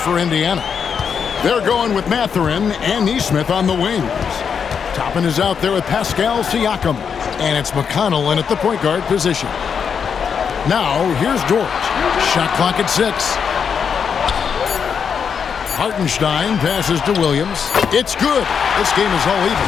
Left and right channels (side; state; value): right; quieter; 6.8 dB